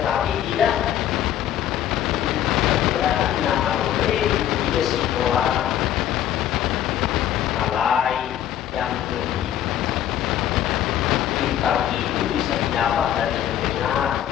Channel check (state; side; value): quieter; right; 11.3 dB